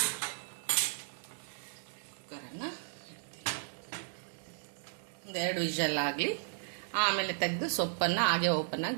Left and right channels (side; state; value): left; silent; digital silence